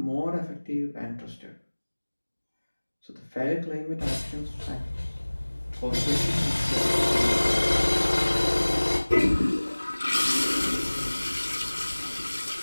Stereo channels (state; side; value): inverted; both; correlation -1.00